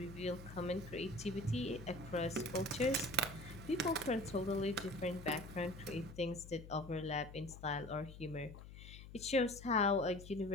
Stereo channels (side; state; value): left; noise; hum, 14 dB below the sound